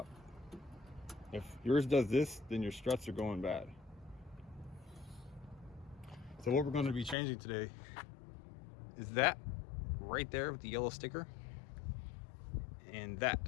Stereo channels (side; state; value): right; drops out; at 7.2 s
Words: If yours does this, then your struts are going bad. So what we're going to be changing today is that right there with the yellow sticker, and that